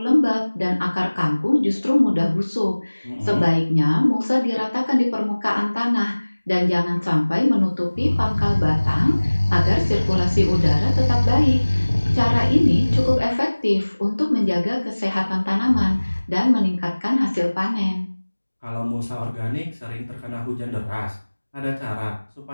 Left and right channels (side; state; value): both; inverted; correlation -1.00